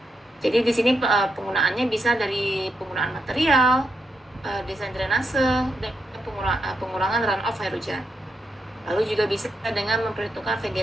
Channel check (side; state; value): both; normal; correlation 0.83